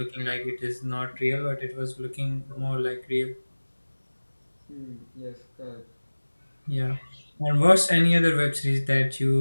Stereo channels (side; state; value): both; inverted; correlation -1.00